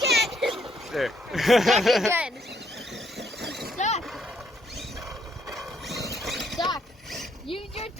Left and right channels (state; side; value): normal; both; correlation 0.71